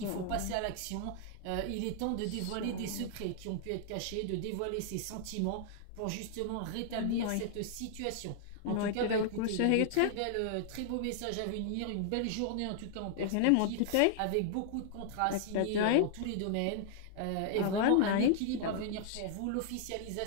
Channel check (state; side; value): different; both; correlation -0.01